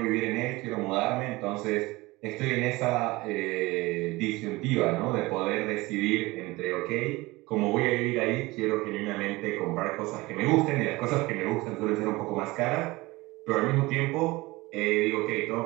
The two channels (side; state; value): left; quieter; 21.4 dB